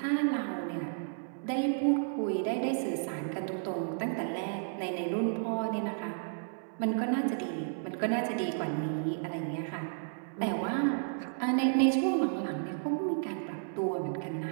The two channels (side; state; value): left; silent; 56 dB below the other